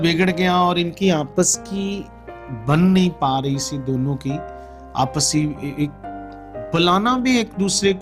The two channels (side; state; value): both; identical; correlation 1.00